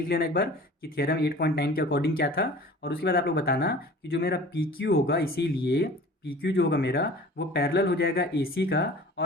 लेना एक बार कि थियरम 8.9 के अकॉर्डिंग क्या था, और उसके बाद आप लोग बताना कि जो मेरा PQ होगा, इसीलिए PQ जो होगा मेरा वो पैरेलल हो जाएगा AC का,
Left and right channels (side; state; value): both; normal; correlation 0.43